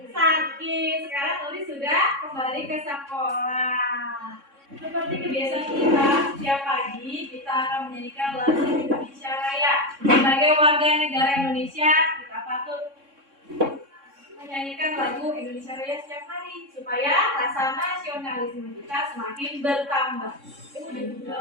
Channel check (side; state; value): left; late; 3.6 ms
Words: Sakit. Sekarang Nuri sudah kembali ke sekolah. Seperti kebiasaan kita, setiap pagi kita akan menyanyikan lagu Indonesia Raya. Sebagai warga negara Indonesia, kita patut menyanyikan lagu Indonesia Raya setiap hari supaya rasa nasionalisme kita semakin bertambah.